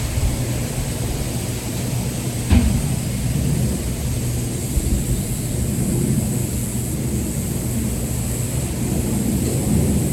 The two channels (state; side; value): identical; both; correlation 1.00